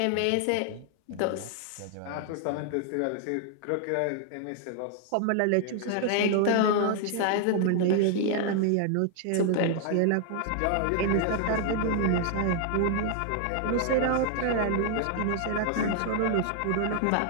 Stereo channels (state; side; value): different; both; correlation 0.00